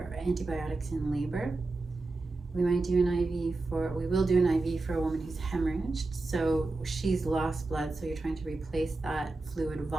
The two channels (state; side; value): quieter; left; 3.3 dB